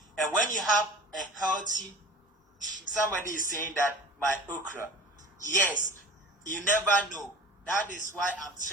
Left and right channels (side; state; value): both; normal; correlation 0.40